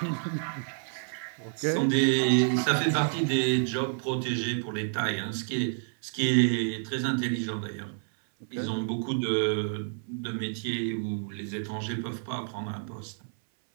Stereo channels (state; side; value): silent; left; 58 dB below the other